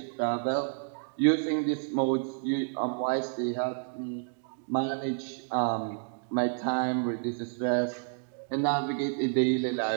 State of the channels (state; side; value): silent; left; digital silence